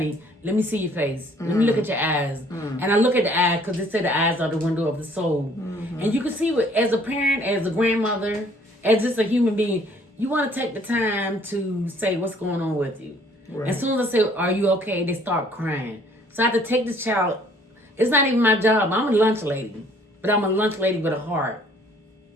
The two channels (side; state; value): both; normal; correlation 0.59